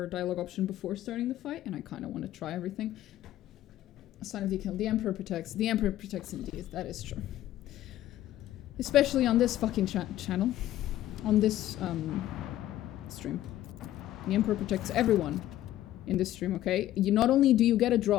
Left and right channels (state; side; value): quieter; right; 13.6 dB